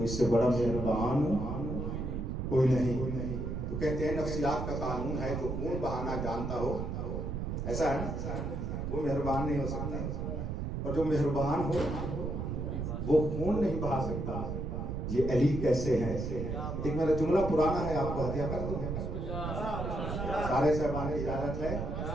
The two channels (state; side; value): noise; right; rumble, 3 dB below the sound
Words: اس سے بڑا مہربان کوئی نہیں. تو کہتے ہیں نفسیات کا قانون ہے, جو خون بہانا جانتا ہو, ایسا ہے نا, وہ مہربان نہیں ہو سکتا, اور جو مہربان ہو وہ خون نہیں بہا سکتا. یہ علی کیسے ہے. ایک میرا جملہ پرانا ہے, آپ کو ہدیہ کر دوں. سارے صاحبان کی اجازت ہے.